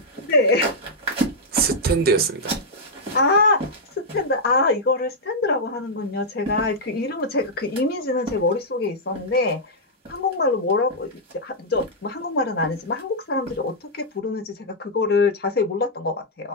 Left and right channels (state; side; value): normal; both; correlation -0.06